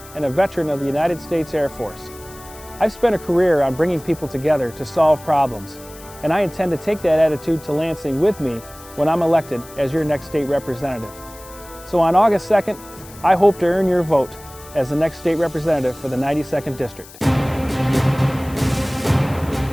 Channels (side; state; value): left; noise; hiss, 20 dB below the sound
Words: and a veteran of the United States Air Force. I've spent a career on bringing people together to solve problems, and I intend to take that attitude to Lansing with me when I'm elected as your next state representative. So on August 2nd, I hope to earn your vote as the next state representative for the 92nd District.